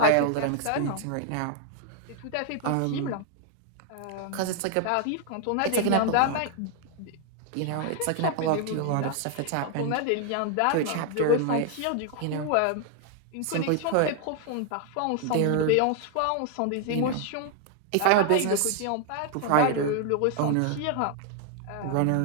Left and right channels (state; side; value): different; both; correlation 0.00